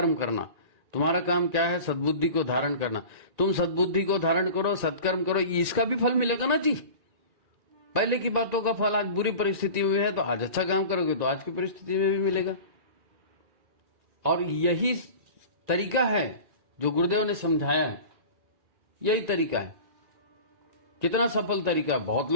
करना। तुम्हारा काम क्या है, सद्बुद्धि को धारण करना। तुम सद्बुद्धि को धारण करो, सत्कर्म करो, इसका भी फल मिलेगा ना जी। पहले की बातों का फल आज बुरी परिस्थिति में है, तो आज अच्छा काम करोगे तो आज की परिस्थिति में भी मिलेगा। और यही तरीका है जो गुरुदेव ने समझाया है, यही तरीका है। कितना सफल तरीका, बहुत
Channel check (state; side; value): late; left; 1.9 ms